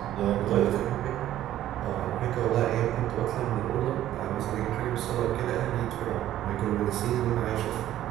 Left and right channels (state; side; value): quieter; left; 12.8 dB